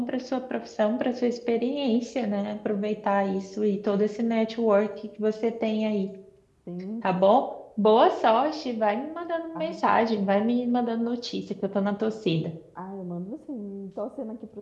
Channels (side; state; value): both; identical; correlation 1.00